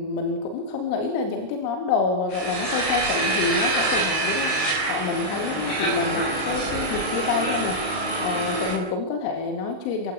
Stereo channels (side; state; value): right; late; 38 ms